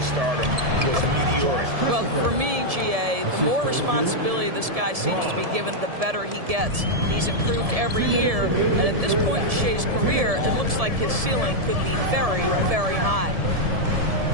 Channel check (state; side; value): late; left; 1.7 ms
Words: stardom was meteoric. Well, for me, GA, the more responsibility this guy seems to be given, the better he gets. He's improved every year, and at this point in Shai's career, it looks like his ceiling could be very, very high.